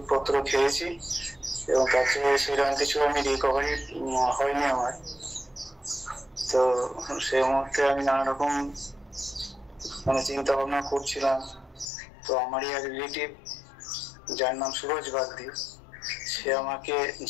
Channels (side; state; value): right; drops out; at 11.9 s